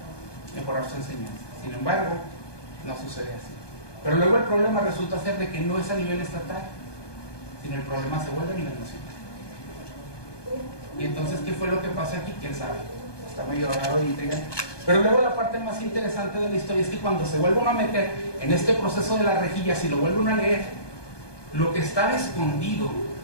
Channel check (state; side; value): late; right; 1.2 ms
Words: mejorar su enseñanza. Sin embargo, no sucede así. Pero luego el problema resulta ser de que no es a nivel estatal, sino el problema se vuelve a nivel nacional. Y entonces, ¿qué fue lo que pasa aquí? ¿Quién sabe? Está medio raro y intrigante. Pero luego la parte más interesante de la historia es que cuando se vuelve uno a meter en este proceso de las rejillas y lo vuelve uno a leer, lo que estaba escondido